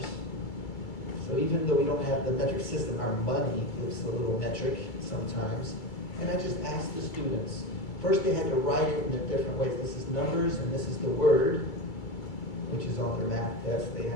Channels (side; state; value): right; late; 2.3 ms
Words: So even though we don't have the metric system, our money looks a little metric sometimes. And I just asked the students. First they had to write it in the different ways. This is numbers and this is the word, which is on their math test. They